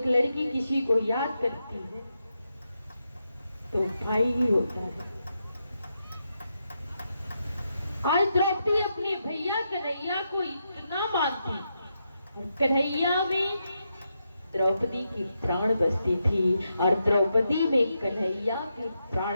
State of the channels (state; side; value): inverted; both; correlation -0.84